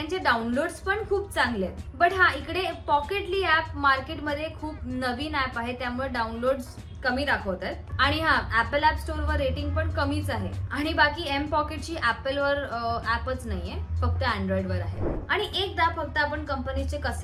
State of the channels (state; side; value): identical; both; correlation 1.00